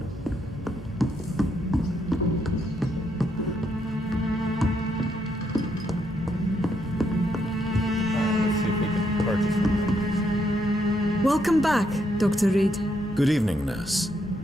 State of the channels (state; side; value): normal; both; correlation 0.76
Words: Welcome back, Dr. Reid. Good evening, nurse.